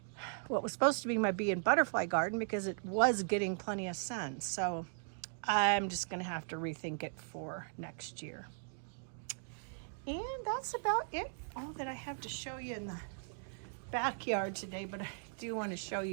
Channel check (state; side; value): silent; left; digital silence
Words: what was supposed to be my bee and butterfly garden, because it was getting plenty of sun. So I'm just gonna have to rethink it for next year. And that's about it, all that I have to show you in the backyard today, but I do want to show